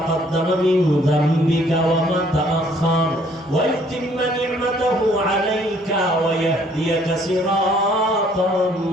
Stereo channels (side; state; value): both; normal; correlation 0.62